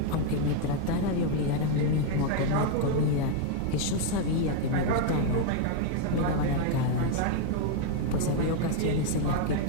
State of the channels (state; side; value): different; both; correlation 0.00